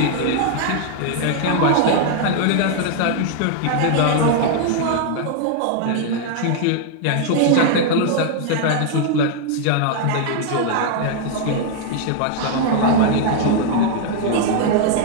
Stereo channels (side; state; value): both; different; correlation 0.00